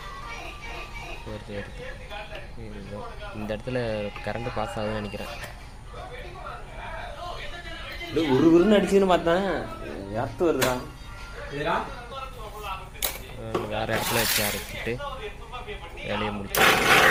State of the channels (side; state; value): both; identical; correlation 1.00